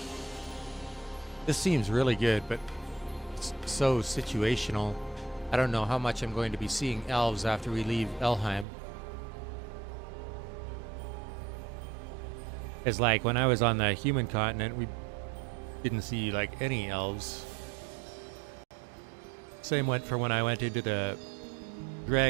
This seems really good, but it's so situational. I don't know how much I'm going to be seeing elves after we leave Elheim. It's like when I was on the human continent, we didn't see like any elves. Same went for when I went into the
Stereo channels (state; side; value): drops out; left; at 8.7 s